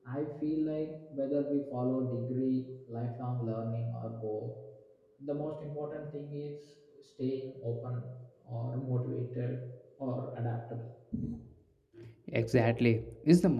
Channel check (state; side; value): identical; both; correlation 1.00